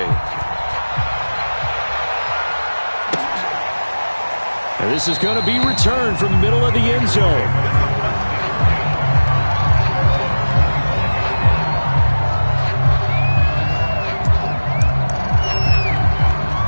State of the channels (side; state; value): both; inverted; correlation -1.00